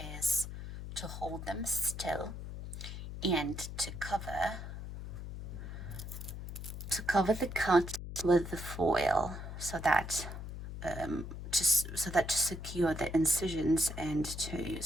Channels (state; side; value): noise; left; hum, 8 dB below the sound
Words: is to hold them still and to cover the cut with the foil so that to secure the incisions and to